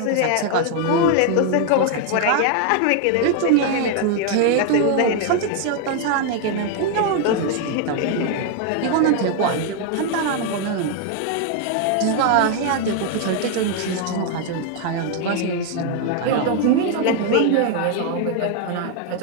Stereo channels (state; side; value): different; both; correlation 0.01